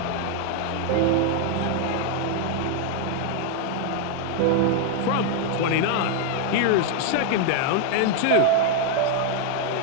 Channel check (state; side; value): different; both; correlation 0.00